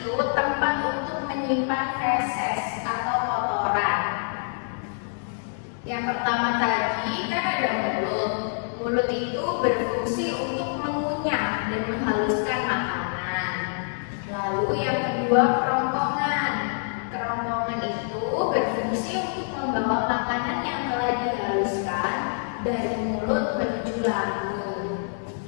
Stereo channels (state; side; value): silent; right; 61 dB below the other